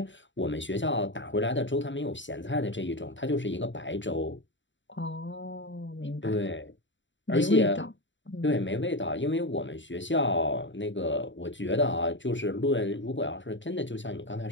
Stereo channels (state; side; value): late; right; 0.54 ms